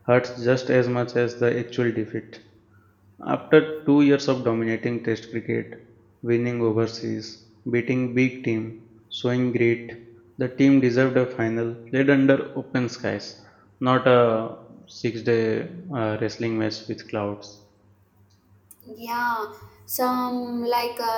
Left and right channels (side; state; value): both; identical; correlation 1.00